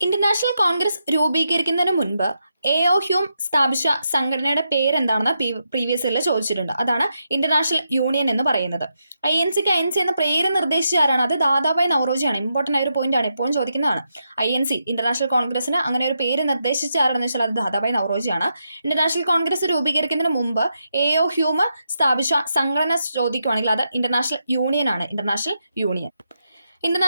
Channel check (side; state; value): both; inverted; correlation -0.83